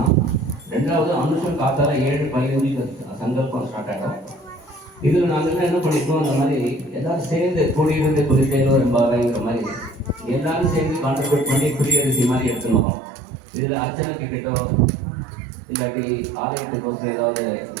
ரெண்டாவது, அனுஷம் காத்தால 7:15 சங்கல்பம் ஸ்டார்ட் ஆகிடும். இதில் நாங்கள் என்ன பண்ணியிருக்கோம், அந்த மாதிரி எல்லாரும் சேர்ந்து கூடியிருந்து குறித்தேனோ என்பாங்கிற மாதிரி எல்லாரும் சேர்ந்து கான்ட்ரிபியூட் பண்ணி குடியரசி மாதிரி எடுத்துன்னு வரோம். இதில் அர்ச்சனைக்கு கிட்டோ இல்லாட்டி ஆலயத்துக்கோசரம் ஏதாவது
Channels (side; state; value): left; drops out; at 12.9 s